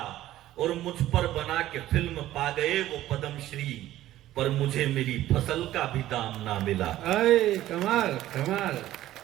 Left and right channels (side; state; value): left; quieter; 14.2 dB